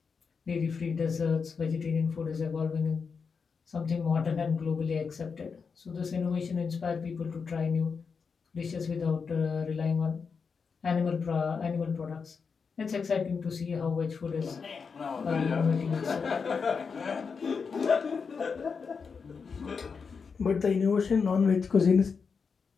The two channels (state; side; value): quieter; right; 5.5 dB